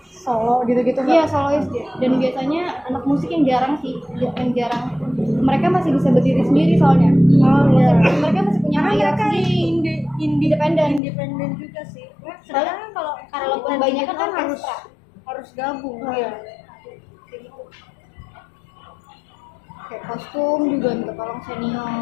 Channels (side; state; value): right; drops out; at 11.0 s